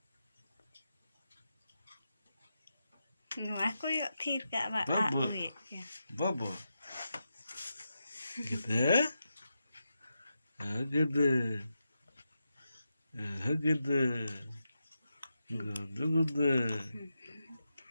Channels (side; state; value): both; inverted; correlation -0.88